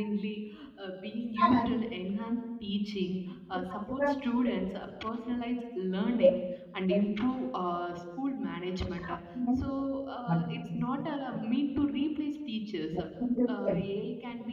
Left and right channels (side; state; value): both; identical; correlation 1.00